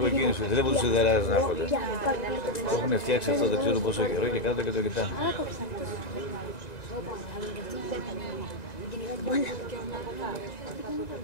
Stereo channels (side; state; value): right; late; 1.9 ms